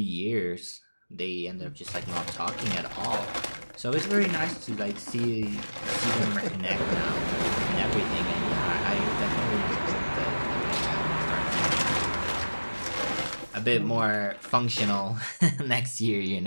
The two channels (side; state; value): both; inverted; correlation -1.00